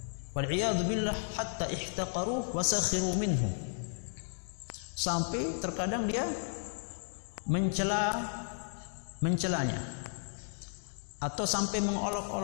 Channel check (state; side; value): silent; right; digital silence